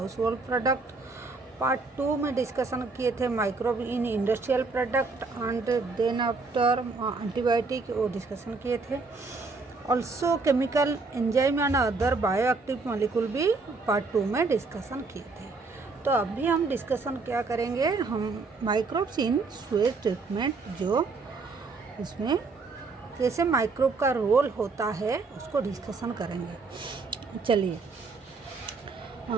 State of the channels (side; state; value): left; quieter; 4.0 dB